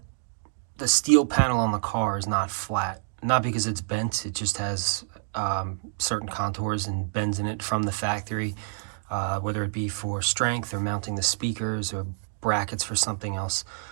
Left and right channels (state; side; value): silent; left; 60 dB below the other